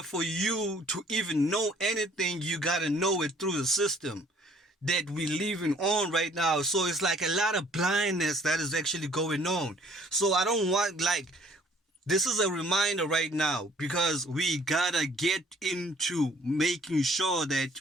for you to even know anything, you gotta know it through the system that we living on right now. So it's like a lot of blindness that is actually going on. So I don't want, like, this is a reminder right now, because we gotta get into making sure that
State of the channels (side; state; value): both; normal; correlation 0.58